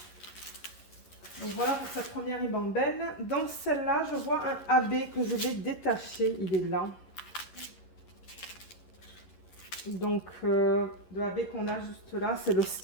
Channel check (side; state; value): right; late; 11 ms